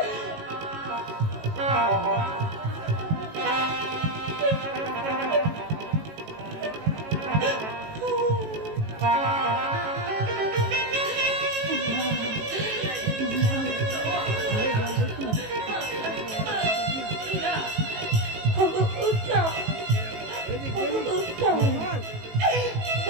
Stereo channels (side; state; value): left; late; 18 ms